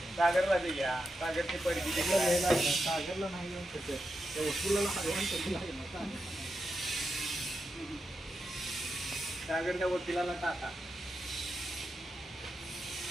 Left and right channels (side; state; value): both; normal; correlation 0.87